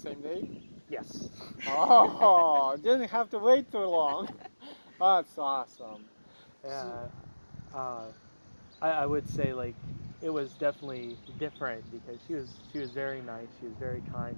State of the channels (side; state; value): both; inverted; correlation -1.00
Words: day? Yes. Oh, didn't have to wait too long. That's awesome. Yeah. I would say, like, it was definitely different because she was very nice, she was very kind,